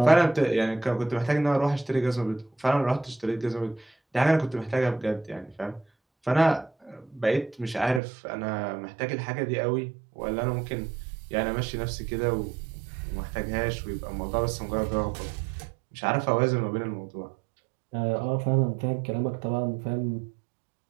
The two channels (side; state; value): left; drops out; at 8.0 s